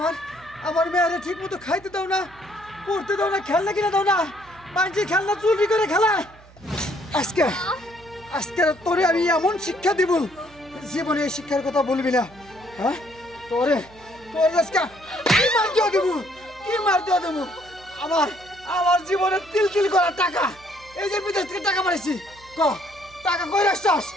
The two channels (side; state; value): right; noise; hum, 24 dB below the sound